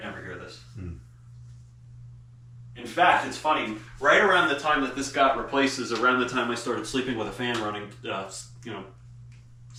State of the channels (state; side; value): identical; both; correlation 1.00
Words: never hear this. In fact, it's funny. Right around the time that this got replaced is around the time I started sleeping with a fan running,